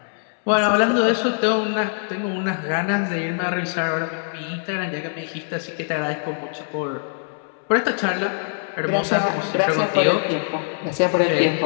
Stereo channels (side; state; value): right; silent; 64 dB below the other